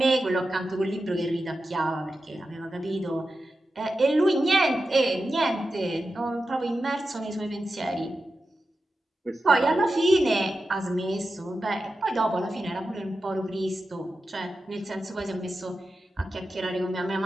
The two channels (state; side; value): normal; both; correlation 0.91